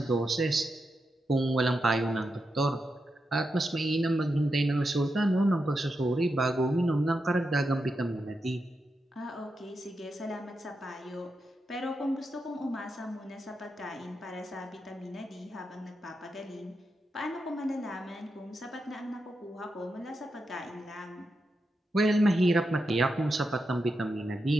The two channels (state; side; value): normal; both; correlation 0.87